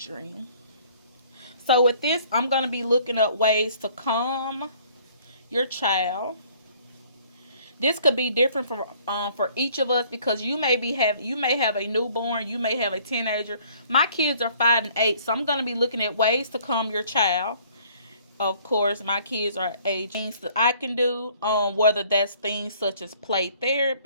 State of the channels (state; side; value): inverted; both; correlation -0.58